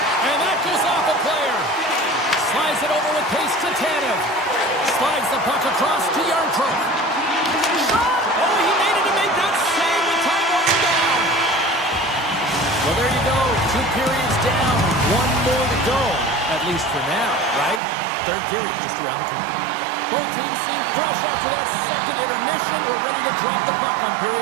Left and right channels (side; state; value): left; drops out; at 17.8 s